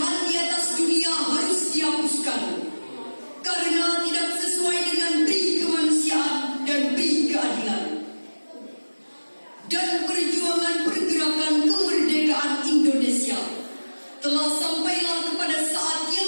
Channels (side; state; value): both; inverted; correlation -1.00